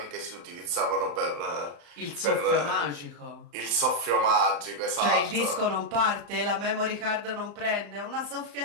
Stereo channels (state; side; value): late; left; 35 ms